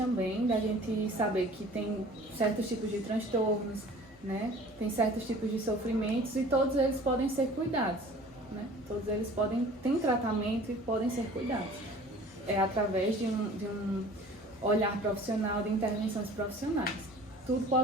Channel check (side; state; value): both; normal; correlation 0.46